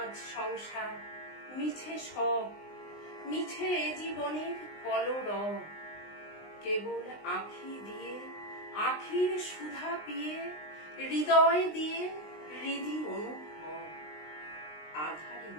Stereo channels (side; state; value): right; late; 19 ms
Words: সংসার মিছে সব, মিছে এ জীবনের কলরব, কেবল আঁখি দিয়ে আখির সুধা পিয়ে, হৃদয় দিয়ে হৃদি অনুভব, আধারে